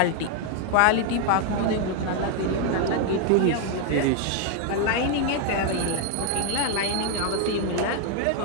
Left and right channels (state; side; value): different; both; correlation 0.00